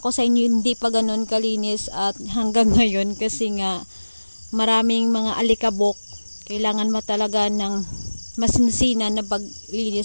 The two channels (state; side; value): inverted; both; correlation -1.00